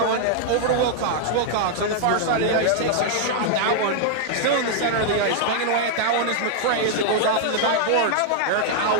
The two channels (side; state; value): both; different; correlation -0.01